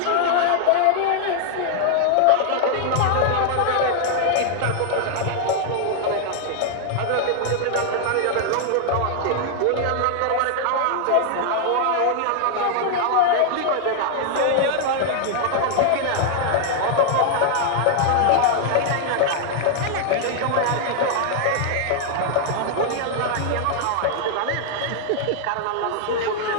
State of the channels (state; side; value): different; both; correlation 0.00